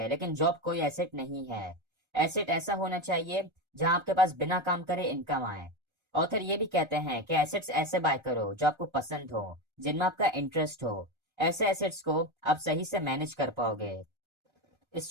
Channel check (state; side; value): late; left; 1.3 ms